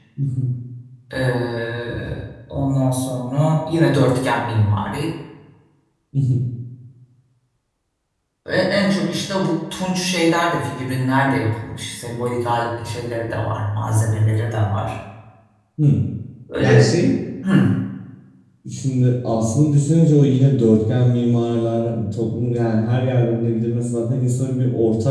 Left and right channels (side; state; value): both; identical; correlation 1.00